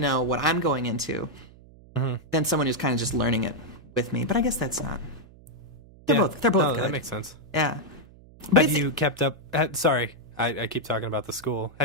what I'm going into than someone who's kind of just learning it with me. But I guess that's not. They're both good. That makes sense. Yeah. But have you kept up? Sorry, I keep talking about the school.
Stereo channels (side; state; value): right; noise; hum, 23 dB below the sound